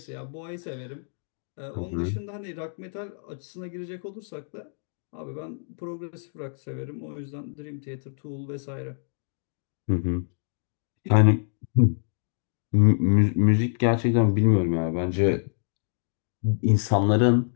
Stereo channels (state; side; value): silent; right; digital silence